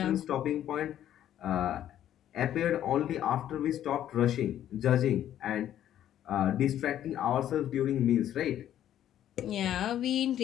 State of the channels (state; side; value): quieter; right; 11.3 dB